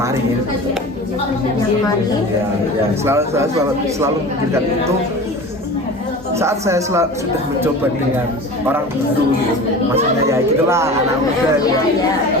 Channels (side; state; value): both; normal; correlation 0.36